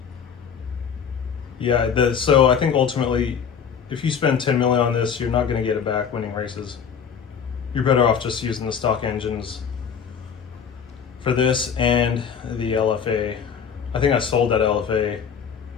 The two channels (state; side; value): quieter; right; 7.1 dB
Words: Yeah, so I think ultimately, if you spend 10 million on this, you're not going to get it back winning races. You're better off just using the stock engines for this and the LFA. I think I sold that LFA.